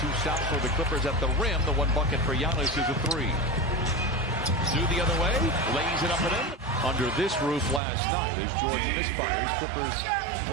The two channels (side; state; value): left; drops out; at 7.8 s